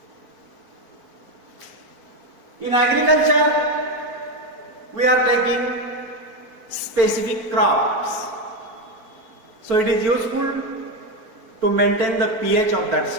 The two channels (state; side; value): late; left; 4.5 ms